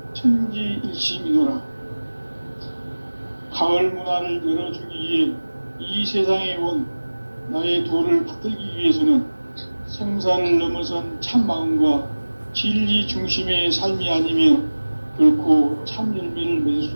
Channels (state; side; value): inverted; both; correlation -1.00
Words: 천지일심이노라. 가을 문화를 열어주기 위해 이 세상에 온 나의 도를 받들기 위해서는 생사를 넘어선 참 마음과 진리 중심의 삶이 아니면 결코 참 열매를 맺을